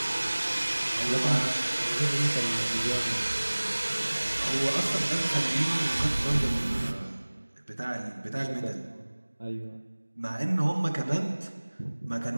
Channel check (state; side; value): inverted; both; correlation -1.00